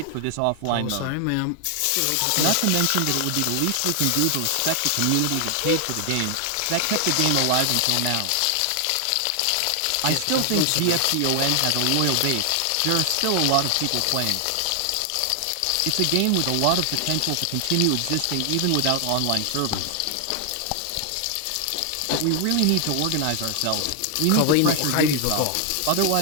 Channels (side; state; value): both; different; correlation 0.00